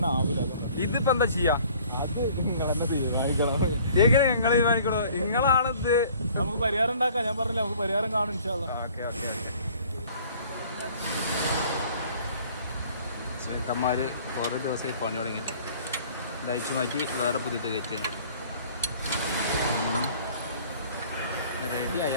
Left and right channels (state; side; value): inverted; both; correlation -0.53